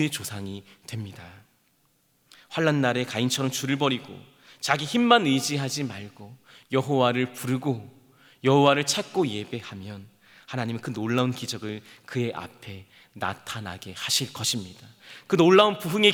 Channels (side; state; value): both; identical; correlation 1.00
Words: 조상이 됩니다. 환난 날에 가인처럼 줄을 버리고 자기 힘만 의지하지 말고 여호와를 부르고 여호와를 찾고 예배하면 하나님은 그 놀라운 기적을 그의 앞에 나타나게 하실 것입니다. 그 놀라운 부흥의